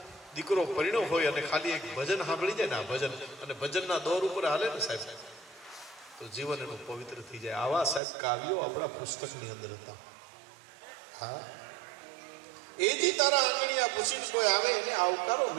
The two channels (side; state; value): left; drops out; at 8.0 s